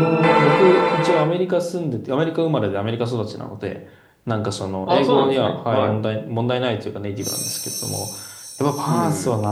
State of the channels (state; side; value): identical; both; correlation 1.00